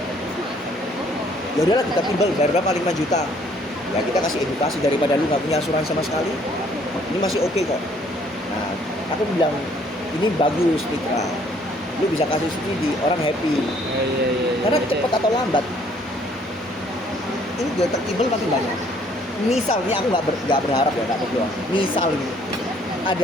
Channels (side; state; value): both; normal; correlation 0.62